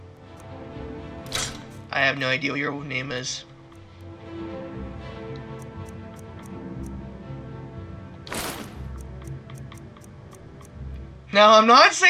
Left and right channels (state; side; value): identical; both; correlation 1.00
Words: I have no idea what your name is. Now, I'm not